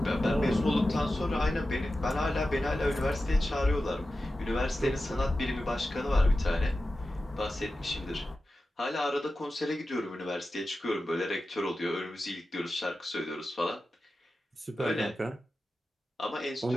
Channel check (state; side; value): normal; both; correlation 0.93